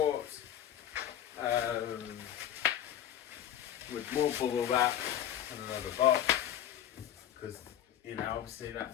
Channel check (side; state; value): right; quieter; 10.9 dB